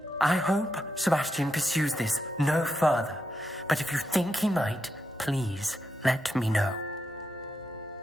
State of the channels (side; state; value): both; normal; correlation 0.84